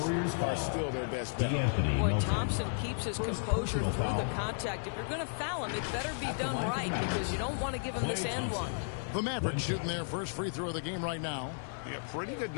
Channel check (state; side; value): silent; right; 55 dB below the other